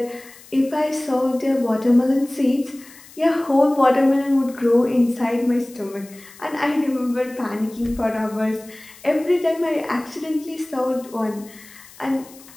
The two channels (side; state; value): left; noise; hiss, 22 dB below the sound